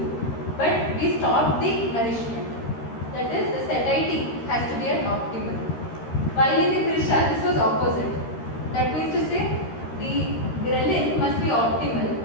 But we stopped the nourishment. That is, the satiety has to be at optimal. While in the Krisha, this was opposite. That means to say, the ghrelin must be optimal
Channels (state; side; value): late; right; 13 ms